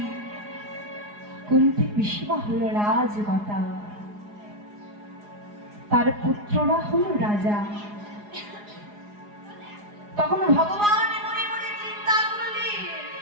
কুন্তী পিসিমা হলো রাজমাতা, তার পুত্ররা হলো রাজা। তখন ভগবান মনে মনে চিন্তা করলেন,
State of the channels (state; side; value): late; left; 4.8 ms